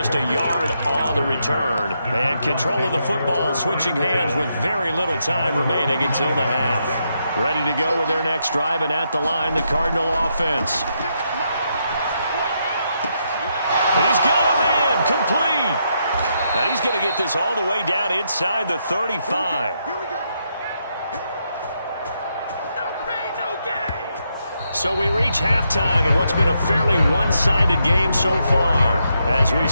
a yard on the return. And control of the football switching hands with very little time remaining until the half. Ready to go with their next drive, and at the line, the Cardinal offense. He's got a man complete. And he's going to get this all the way down inside the 35. So we reach halftime in what's been a fairly one-sided game so far. As we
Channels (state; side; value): inverted; both; correlation -0.80